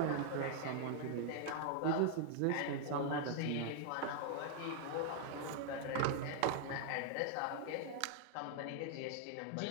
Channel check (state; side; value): different; both; correlation 0.00